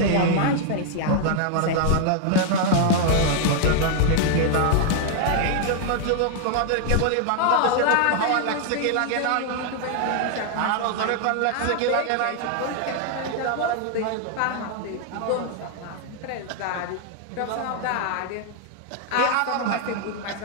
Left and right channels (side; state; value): both; different; correlation 0.00